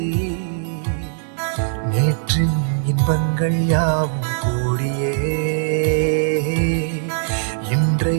நேற்றின் இன்பங்கள் யாவும் கூடியே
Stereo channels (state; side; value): silent; left; digital silence